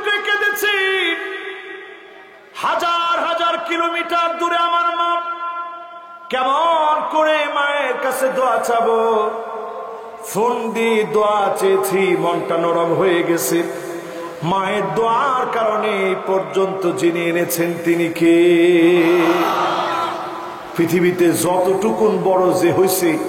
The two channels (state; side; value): identical; both; correlation 1.00